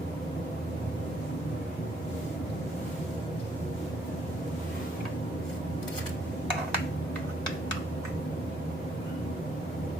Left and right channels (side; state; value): both; normal; correlation 0.70